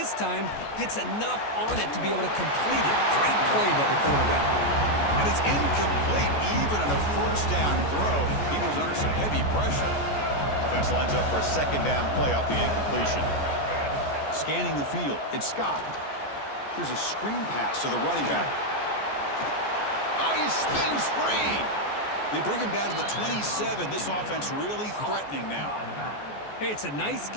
time gets enough on it to be able to complete it. Great play by the quarterback. And it's incomplete even on a 1st down throw. He was under some heavy pressure. Offense lines up for a 2nd down play off the incompletion. Scanning the field, it's Scott. Here's a screen pass to the running back. Oh, he spins free. They bring him down to the 27. This offense really threatening now. Hey, it's a nice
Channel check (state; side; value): late; right; 14 ms